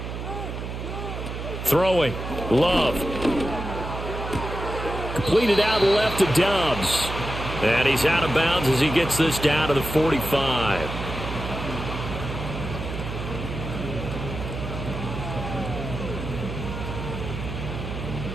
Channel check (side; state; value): right; noise; hum, 6 dB below the sound